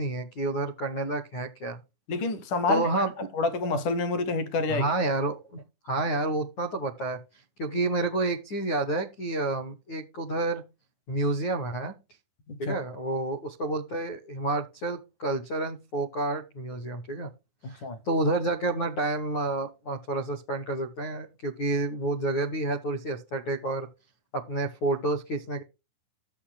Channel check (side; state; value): right; late; 9.5 ms